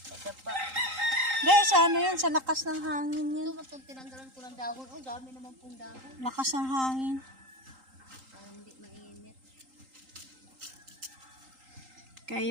nadapa. Guys, ano yan? Sa lakas ng hangin yan. Ito matong tinanggalan ko ng dahon. Oh, dami naman pong dahon. Lakas ng hangin. Para hindi mainit. Kaya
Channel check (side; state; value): left; late; 3.8 ms